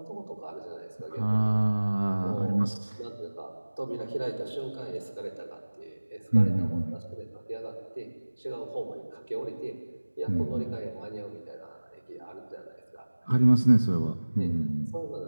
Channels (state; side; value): inverted; both; correlation -1.00